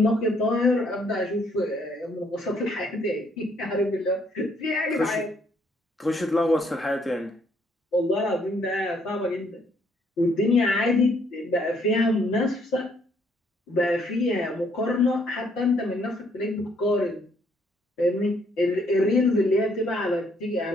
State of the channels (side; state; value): both; normal; correlation 0.68